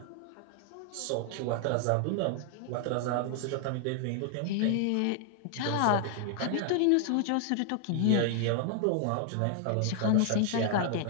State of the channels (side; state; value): both; different; correlation 0.00